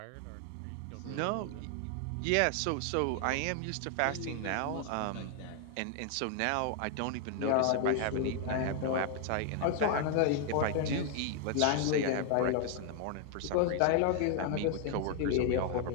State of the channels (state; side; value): different; both; correlation 0.00